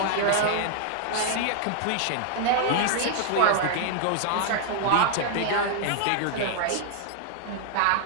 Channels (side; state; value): both; different; correlation 0.00